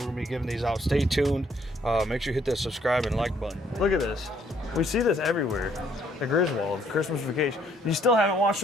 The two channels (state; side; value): normal; both; correlation 0.66